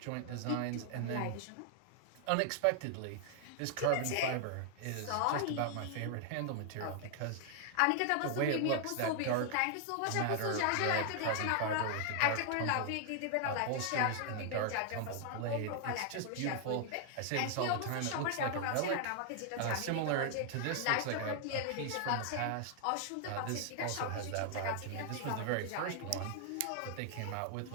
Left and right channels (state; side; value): different; both; correlation 0.00